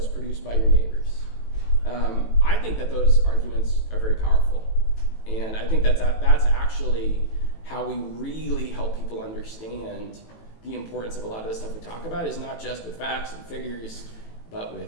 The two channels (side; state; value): right; late; 18 ms